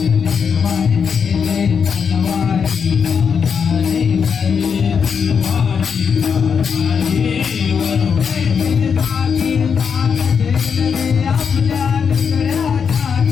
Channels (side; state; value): right; quieter; 6.5 dB